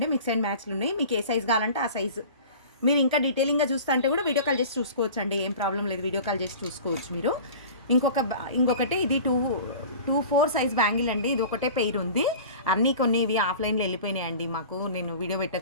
మిక్స్ అండ్ మ్యాచ్లు ఉన్నాయి. మీకు ఏ సైజు కావాలంటే ఆ సైజు. మీరు ఇంకా డీటెయిలింగ్గా చూస్తా అంటే కూడా వీడియో కాల్ చేసి చూసుకోవచ్చు అండి, ఏం ప్రాబ్లం లేదు. వీడియో కాల్ చేసి చూసుకోవచ్చు మీరు. ఇంకొకటి ఇది 2/4 సైజ్ బ్యాంగిల్ అండి. ఇది ఒకటే పెయిర్ ఉంది. కొన్ని ఇవి ఆఫ్లైన్లో వెళ్ళిపోయినాయండి మాకు. నేను వీడియో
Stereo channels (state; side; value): inverted; both; correlation -0.39